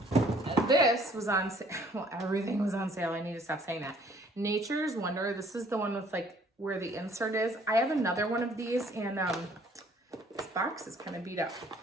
And this was on sale. Well, everything was on sale. I need to stop saying that. Nature's Wonder. This is the one with like where the insert is. I have another one of these in, this box is kind of beat up.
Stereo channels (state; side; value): normal; both; correlation 0.59